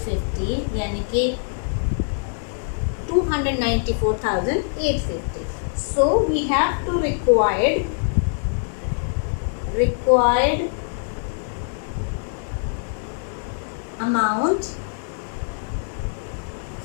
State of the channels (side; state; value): right; silent; digital silence